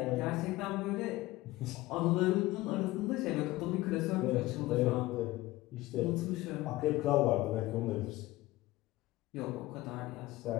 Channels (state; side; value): quieter; right; 18.4 dB